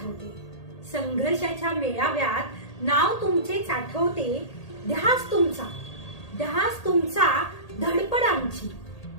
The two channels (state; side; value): late; right; 1.8 ms